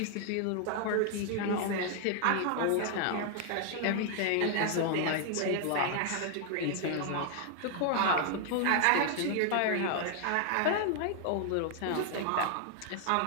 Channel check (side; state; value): both; different; correlation 0.00